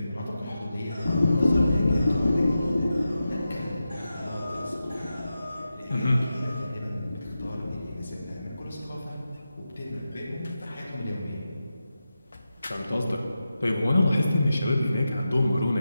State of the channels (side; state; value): both; inverted; correlation -0.91